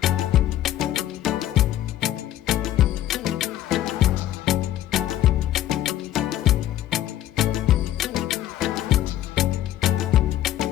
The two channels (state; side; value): quieter; right; 12.9 dB